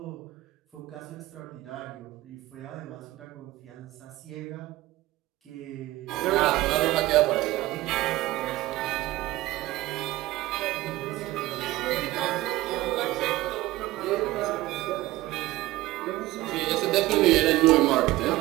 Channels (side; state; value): left; quieter; 17.8 dB